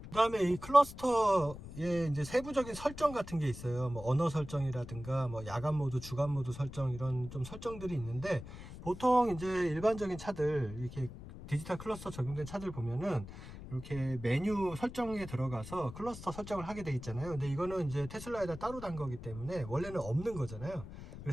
그 다음에 이 클러스터에 이제 세부적인 설정 같은 게 있어요. 뭐 언어 설정이라든가 뭐 야간 모드, 주간 모드 설정, 이런 좀 설정들이 있는데, 보통 이제 일반적인 차들, 이렇게 디지털 클러스터 적용된 차들 보면은 이렇게 메뉴 설정에 들어가서 클러스터 설정을 하게 돼 있잖아요. 근데 이거는 이제 테슬라에다 따로 단 거기 때문에 원래는 없는 거잖아요.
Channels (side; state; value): left; noise; rumble, 13 dB below the sound